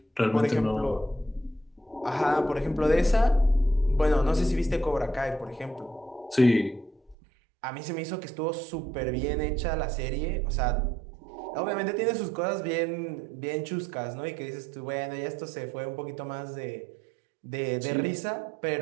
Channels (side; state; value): left; drops out; at 7.2 s